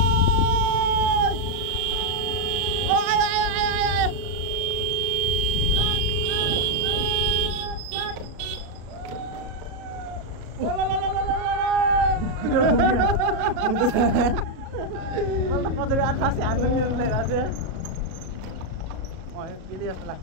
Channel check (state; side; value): late; left; 37 ms